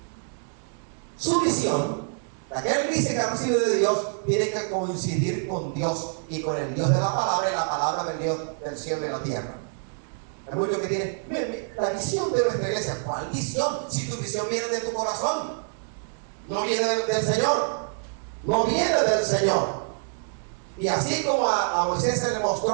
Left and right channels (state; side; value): silent; left; 61 dB below the other